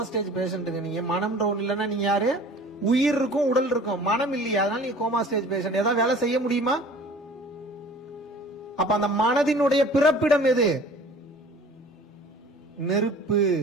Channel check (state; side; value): normal; both; correlation 0.46